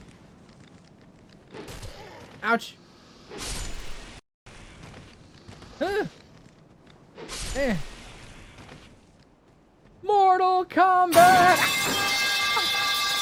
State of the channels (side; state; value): both; identical; correlation 1.00